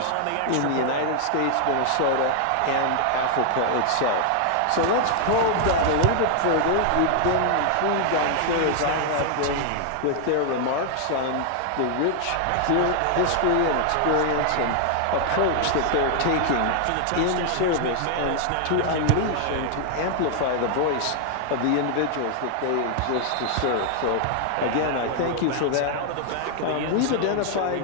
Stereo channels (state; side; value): different; both; correlation 0.00